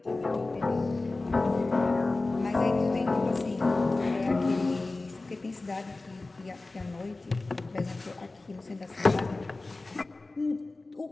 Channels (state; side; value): quieter; right; 3.2 dB